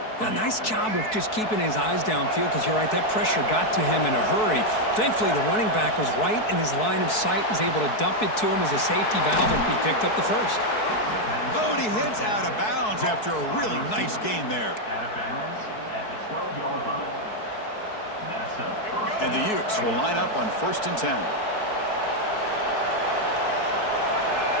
A nice job of just keeping his eyes downfield, because you're right, that pressure got to him in a hurry. Thankfully, the running back was right in his line of sight, was able to dump it to him as a safety valve, and he picked up the first. Oh, and he heads out of bounds after a really nice gain there. And the Utes will line up on 1st and 10.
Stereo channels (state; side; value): late; right; 4.6 ms